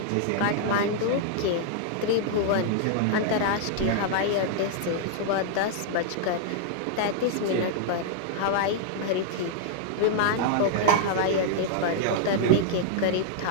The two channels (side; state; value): both; different; correlation -0.01